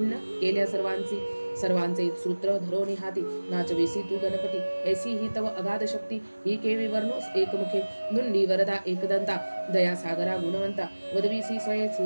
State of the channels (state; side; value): inverted; both; correlation -1.00